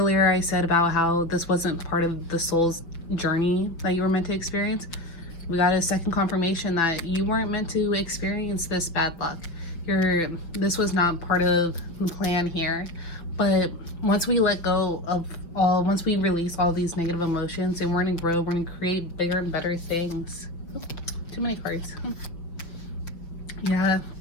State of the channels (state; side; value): late; right; 5.9 ms